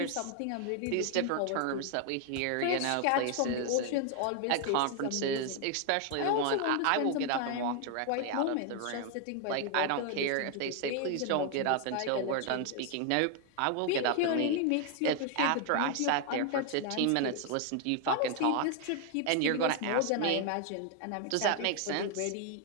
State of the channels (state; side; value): different; both; correlation 0.00